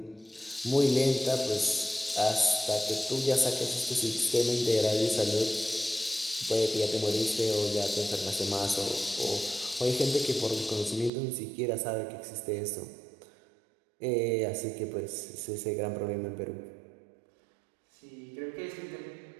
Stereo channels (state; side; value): drops out; left; at 11.1 s